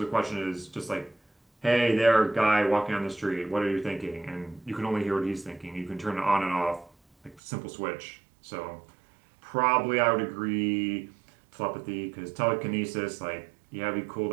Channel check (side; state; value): left; drops out; at 7.4 s